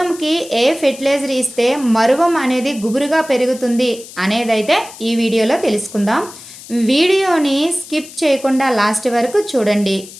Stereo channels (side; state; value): left; noise; hiss, 17 dB below the sound